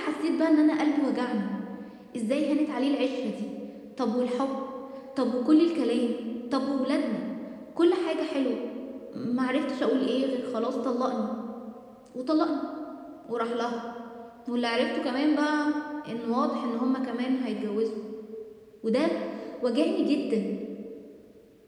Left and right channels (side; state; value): both; identical; correlation 1.00